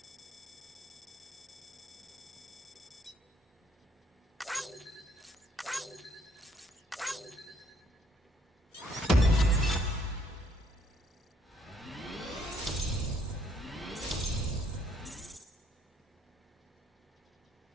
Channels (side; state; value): both; normal; correlation 0.67